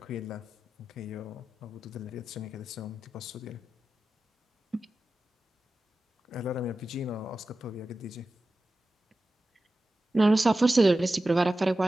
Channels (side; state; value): both; normal; correlation 0.94